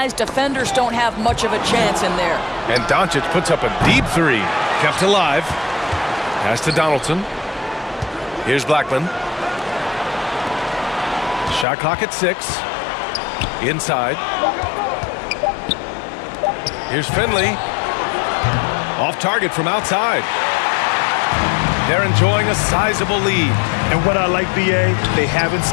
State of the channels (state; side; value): drops out; right; at 11.7 s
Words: defenders don't have much of a chance in there. And Doncic puts up a deep 3. Kept alive. Pass to Donaldson. Here's Blackman. Shot clock at 6. Inside. Here's Finley. Off target from outside. They're enjoying a sizable lead. And what I like, B.A., they haven't